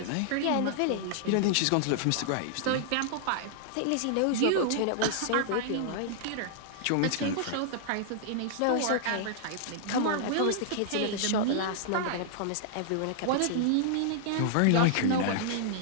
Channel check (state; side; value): different; both; correlation -0.01